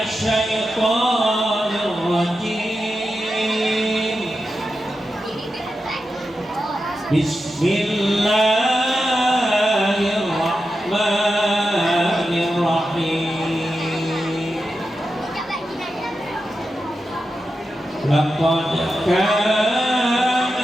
syaithanir rajim. Bismillahirrahmanirrahim. Laqad kana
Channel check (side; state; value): both; normal; correlation 0.90